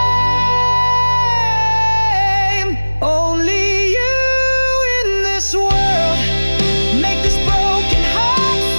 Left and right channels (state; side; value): inverted; both; correlation -1.00